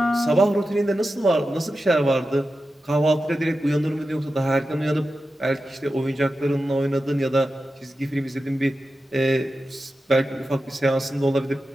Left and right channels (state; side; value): normal; both; correlation 0.92